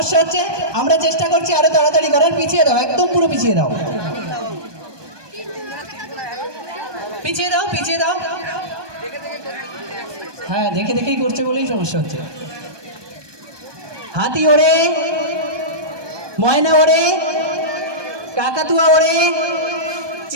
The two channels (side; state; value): left; late; 1.2 ms